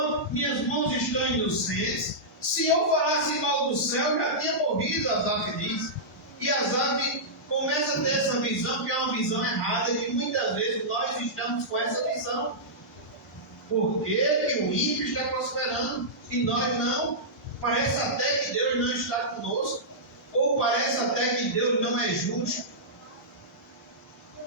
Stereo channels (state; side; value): normal; both; correlation -0.13